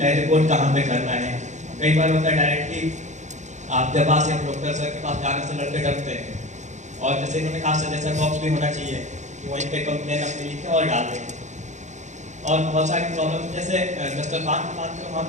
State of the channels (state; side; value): late; left; 0.34 ms